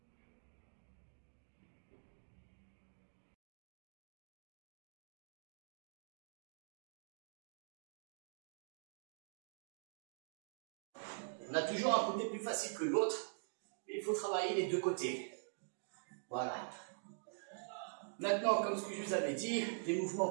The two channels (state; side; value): silent; left; digital silence